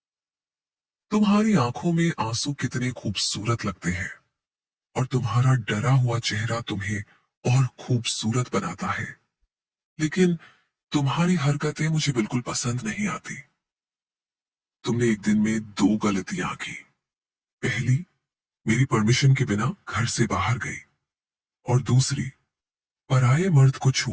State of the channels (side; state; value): both; identical; correlation 1.00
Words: तुम्हारी आंखों में आंसू कितने खूबसूरत लगते हैं और तुम्हारा डरा हुआ चेहरा तुम्हें और खूबसूरत बनाता है, लेकिन तुम्हारी हरकतें मुझे बिल्कुल पसंद नहीं आती। तुमने एक दिन में 2 गलतियां की। पहली, मेरी परमिशन के बिना घर से बाहर गई, और दूसरी, पराये मर्द को